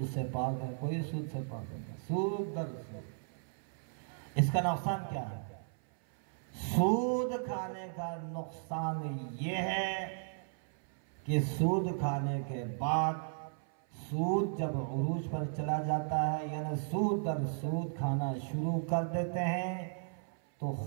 سے پاک ہے، کوئی سود سے پاک نہیں، سود در سود۔ اس کا نقصان کیا ہے؟ سود کھانے کا نقصان یہ ہے کہ سود کھانے کے بعد، سود جب عروج پر چلا جاتا ہے، یعنی سود در سود کھانا شروع کر دیتے ہیں، تو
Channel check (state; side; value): silent; left; 54 dB below the other